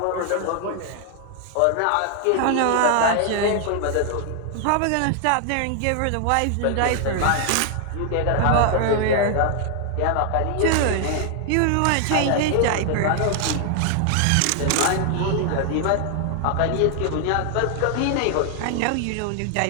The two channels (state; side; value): different; both; correlation 0.00